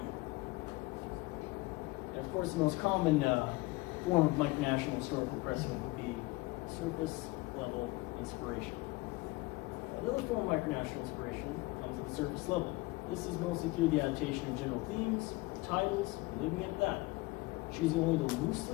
And of course, the most common form of micronational historical precedent would be surface level inspiration. Another form of micronational inspiration comes at the surface level. This is mostly through the adaptation of general themes, titles, leaving it at that. Choosing only to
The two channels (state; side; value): quieter; right; 22.1 dB